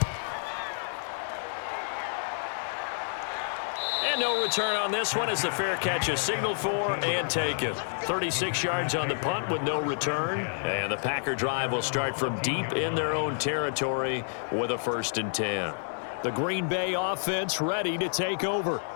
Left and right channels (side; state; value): right; silent; digital silence